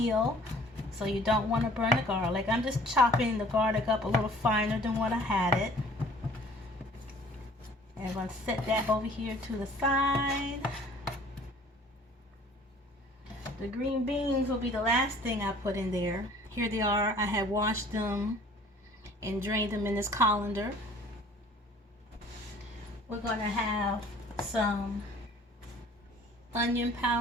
so you don't want to burn the garlic. I'm just chopping the garlic up a little finer than what I had it. And I'm going to set that over here to the side. The green beans will be the last thing I put in there. Here they are. I have washed them and drained them in this colander. We're going to have some onion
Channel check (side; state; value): both; normal; correlation 0.52